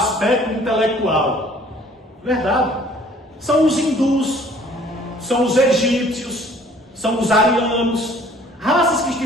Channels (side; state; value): both; normal; correlation 0.55